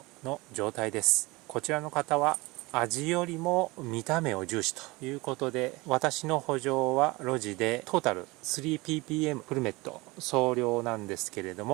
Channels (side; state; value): left; quieter; 23.1 dB